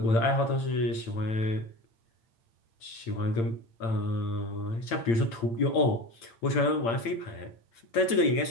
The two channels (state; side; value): late; right; 8.8 ms